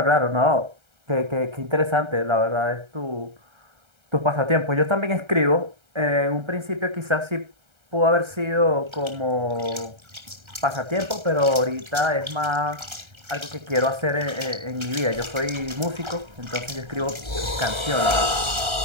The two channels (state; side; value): late; left; 1.3 ms